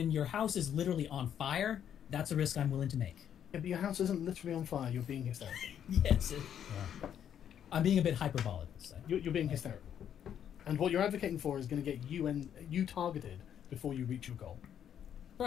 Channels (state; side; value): quieter; right; 9.3 dB